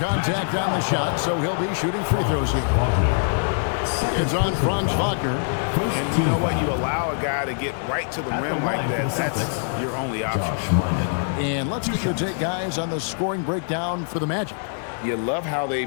on the shot, so he'll be shooting free throws here. It's on Franz Wagner. And you know what? You allow a guy to get right to the rim like that. That's your only option. And let's get your take, guys, on the scoring breakdown for the Magic. You love how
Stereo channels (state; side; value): silent; right; digital silence